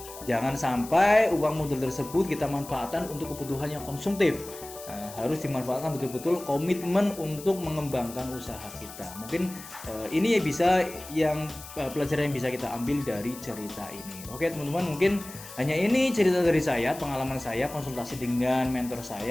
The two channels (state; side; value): noise; left; hiss, 15 dB below the sound